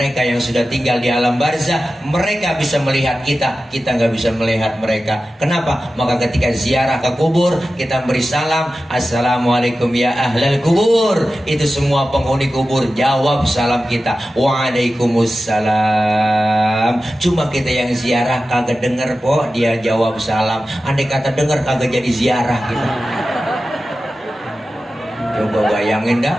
yang sudah tinggal di alam barzah, mereka bisa melihat kita, kita nggak bisa melihat mereka. Kenapa? Maka ketika ziarah ke kubur, kita beri salam, assalamualaikum ya ahlal kubur. Itu semua penghuni kubur jawab salam kita, waalaikumsalam. Cuma kita yang ziarah kagak denger po, dia jawab salam. Andai kata denger kagak jadi ziarah kita. Coba bayangin dah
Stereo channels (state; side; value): normal; both; correlation 0.94